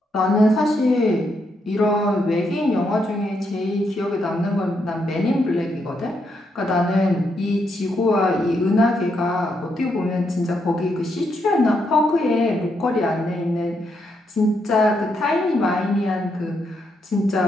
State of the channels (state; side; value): normal; both; correlation 0.79